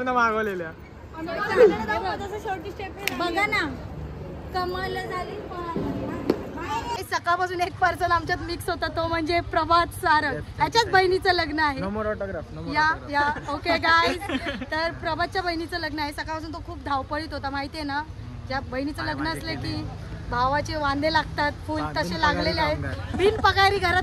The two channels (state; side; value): identical; both; correlation 1.00